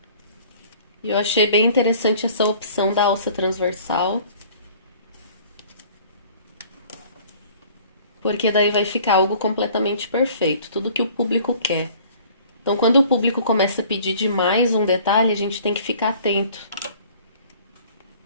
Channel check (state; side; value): inverted; both; correlation -0.51